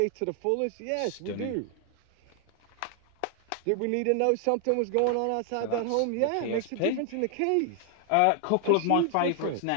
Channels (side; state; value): both; different; correlation 0.00